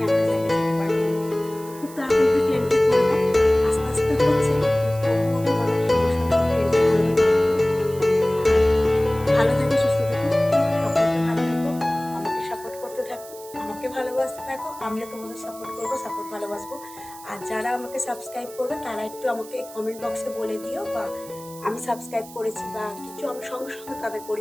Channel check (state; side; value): noise; right; hiss, 18 dB below the sound